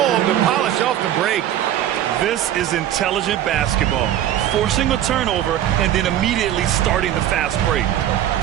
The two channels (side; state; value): left; quieter; 11.7 dB